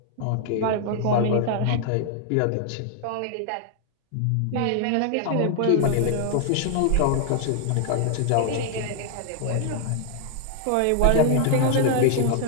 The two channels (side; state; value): both; different; correlation 0.00